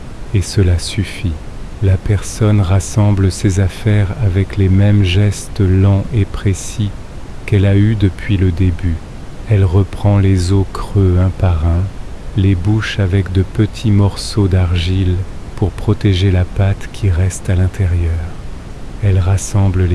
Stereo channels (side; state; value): both; identical; correlation 1.00